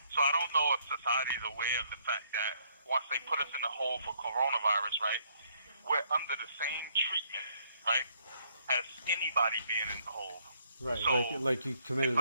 So I don't know if society is aware of the fact that once they put us in a hole for coronavirus, right, we're under the same treatment, right, as anybody being in the hole. Right, so like you committed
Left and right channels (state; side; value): inverted; both; correlation -0.68